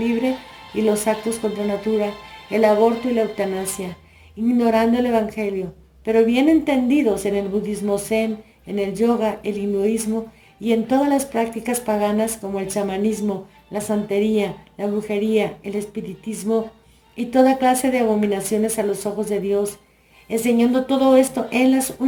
y los actos contra natura, el aborto y la eutanasia, ignorando el Evangelio, pero bien entendidos en el budismo zen, en el yoga, el hinduismo y en todas las prácticas paganas como el chamanismo, la santería, la brujería, el espiritismo y toda clase de abominaciones a los ojos de Dios, enseñando todo esto en las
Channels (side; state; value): both; identical; correlation 1.00